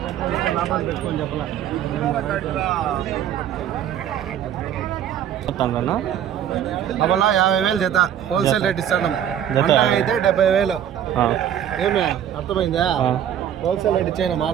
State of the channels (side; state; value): left; quieter; 10.0 dB